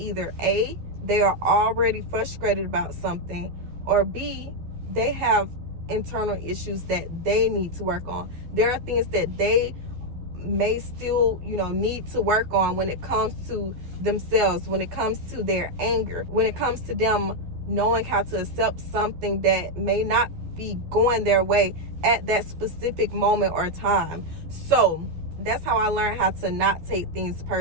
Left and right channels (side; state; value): left; late; 12 ms